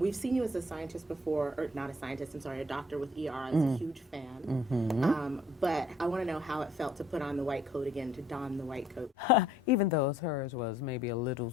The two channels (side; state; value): both; normal; correlation 0.62